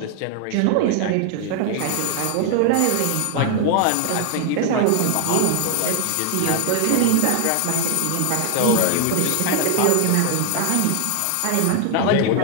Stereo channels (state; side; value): different; both; correlation 0.00